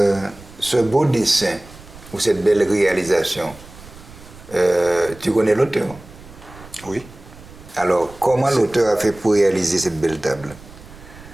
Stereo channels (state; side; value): noise; right; rumble, 19 dB below the sound